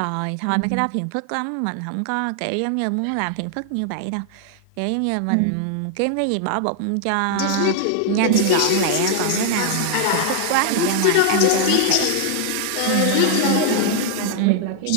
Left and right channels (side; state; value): both; different; correlation 0.00